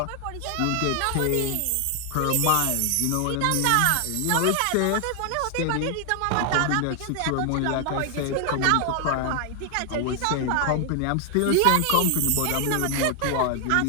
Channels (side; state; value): both; different; correlation 0.00